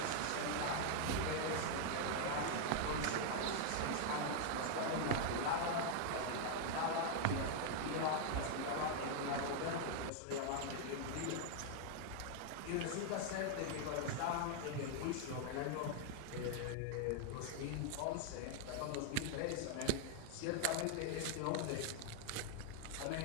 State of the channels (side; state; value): both; different; correlation 0.00